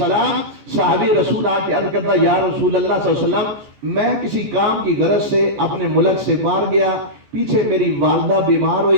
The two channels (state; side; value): late; left; 14 ms